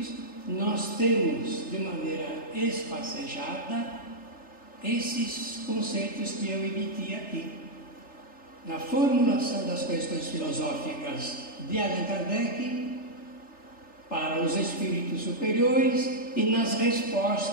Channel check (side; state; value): right; late; 3.4 ms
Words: nós temos de maneira espacejada esses conceitos que eu emiti aqui. Na formulação das questões filosóficas de Allan Kardec para os espíritos superiores e nas